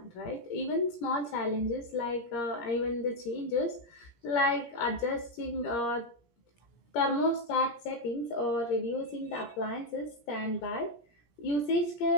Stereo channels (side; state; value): right; late; 17 ms